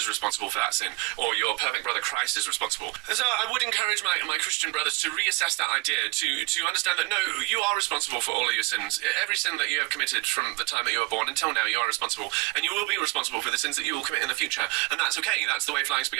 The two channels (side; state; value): left; quieter; 24.0 dB